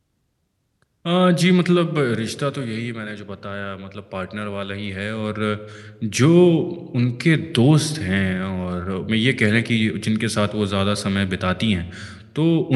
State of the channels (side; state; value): both; identical; correlation 1.00